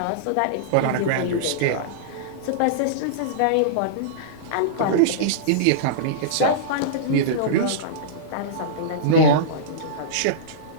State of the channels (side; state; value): both; different; correlation -0.03